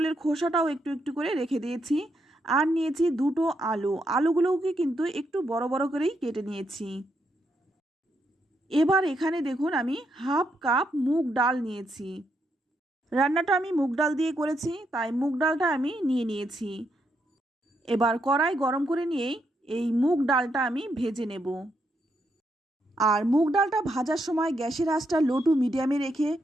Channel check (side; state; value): both; normal; correlation 0.79